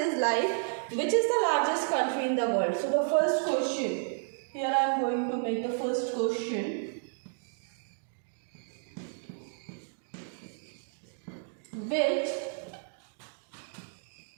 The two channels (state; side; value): silent; left; digital silence